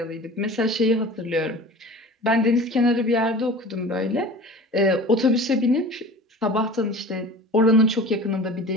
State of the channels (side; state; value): both; normal; correlation 0.39